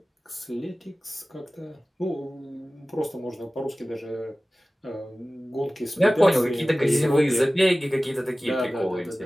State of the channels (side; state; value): both; normal; correlation 0.97